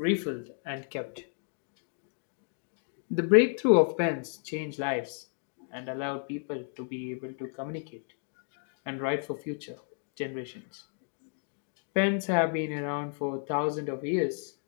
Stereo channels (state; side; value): silent; right; 56 dB below the other